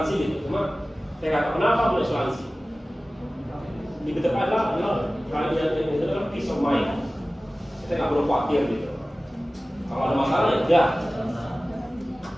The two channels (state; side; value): normal; both; correlation 0.97